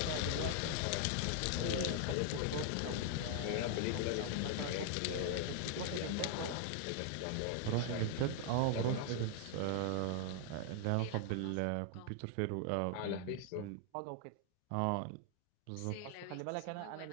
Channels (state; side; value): different; both; correlation 0.00